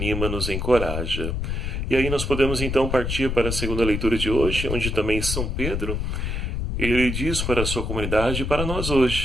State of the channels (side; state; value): left; noise; rumble, 2 dB below the sound